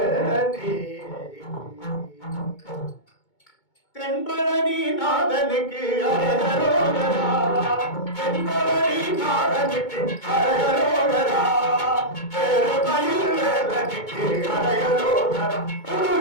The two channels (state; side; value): late; right; 2.2 ms